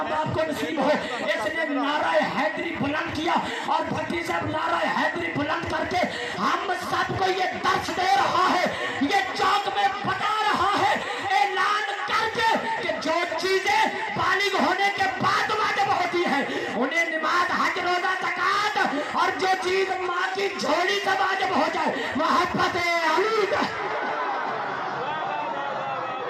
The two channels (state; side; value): identical; both; correlation 1.00